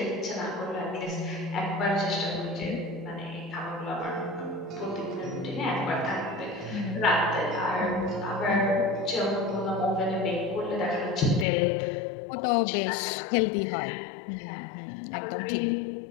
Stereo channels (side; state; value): right; drops out; at 11.5 s